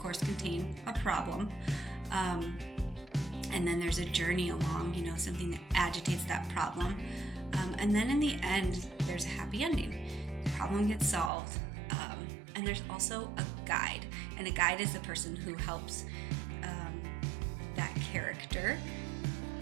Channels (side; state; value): left; drops out; at 11.3 s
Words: contain a problem. And then there's a journey along, something that agitates that problem. And then in the end, there's a happy ending. The problem gets solved. And there's also a guide. And a guide is the person who helps that character